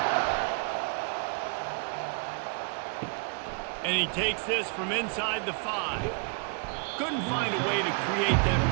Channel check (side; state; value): left; quieter; 38.5 dB